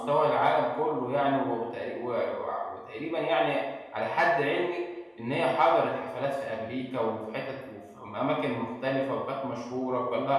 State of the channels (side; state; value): both; identical; correlation 1.00